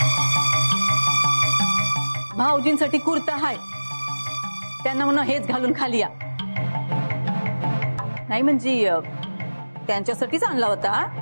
भाऊजींसाठी कुर्ता हाय, त्यांना म्हणा हेच घालून खाली या. नाही म्हणजे त्यांच्यासाठीच आणला होता.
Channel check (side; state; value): both; inverted; correlation -1.00